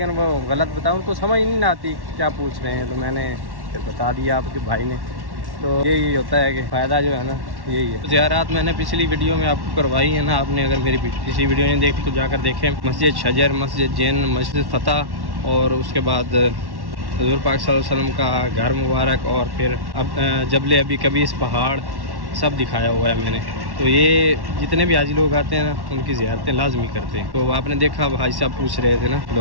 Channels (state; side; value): late; left; 1.1 ms